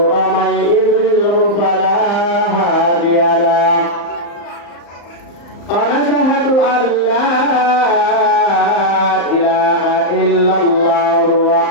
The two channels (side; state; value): right; late; 35 ms